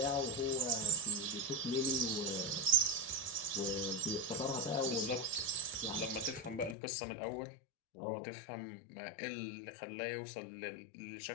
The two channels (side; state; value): right; drops out; at 6.8 s